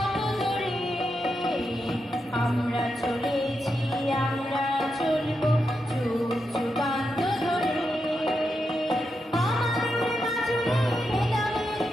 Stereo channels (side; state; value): both; normal; correlation 0.86